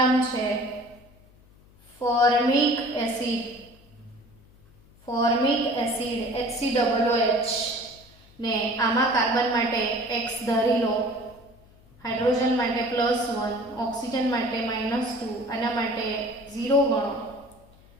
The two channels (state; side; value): noise; left; hum, 27 dB below the sound